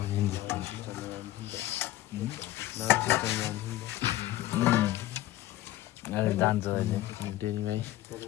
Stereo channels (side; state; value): right; quieter; 15.5 dB